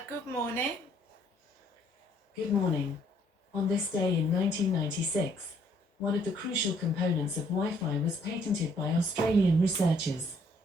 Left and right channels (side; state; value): both; normal; correlation 0.66